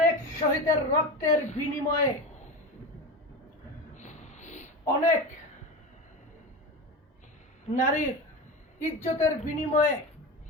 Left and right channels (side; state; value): both; normal; correlation 0.24